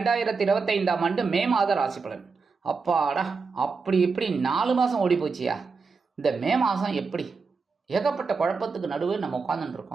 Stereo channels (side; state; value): left; quieter; 4.8 dB